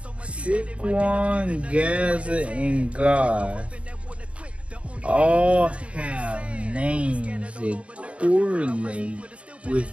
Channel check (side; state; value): left; late; 0.062 ms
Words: Shikron, Gaza, and Gath all have names that correlate with